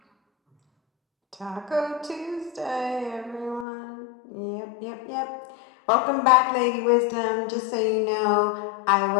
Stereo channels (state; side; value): drops out; right; at 3.7 s